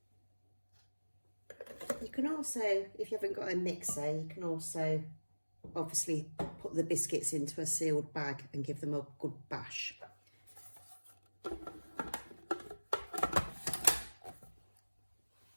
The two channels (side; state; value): both; inverted; correlation -1.00